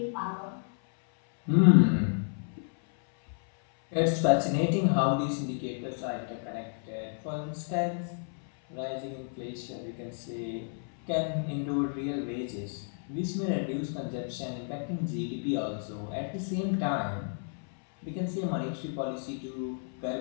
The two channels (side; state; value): right; silent; 57 dB below the other